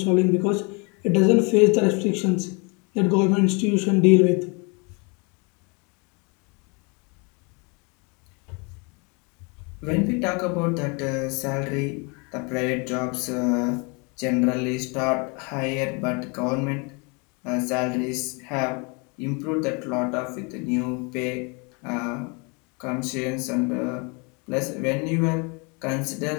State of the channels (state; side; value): quieter; right; 31.7 dB